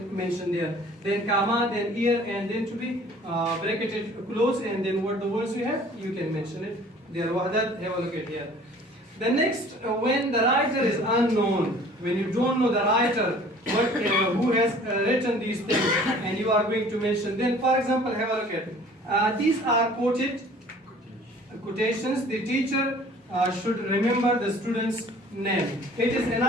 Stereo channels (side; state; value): both; normal; correlation 0.50